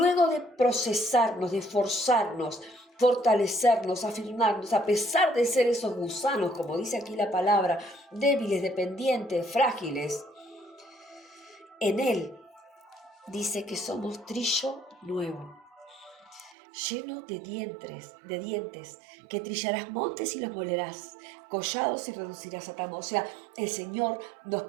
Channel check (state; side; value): drops out; left; at 16.6 s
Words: de procesarnos, de forzarnos, fortalecernos, afirmarnos, a pesar de ser esos gusanos, como dice aquí la palabra, débiles, dependientes, frágiles, en Él dice que somos trillo nuevo, lleno de dientes, que trillarás montes y los molerás, collados y reducirás a tamo. O sea, el Señor nos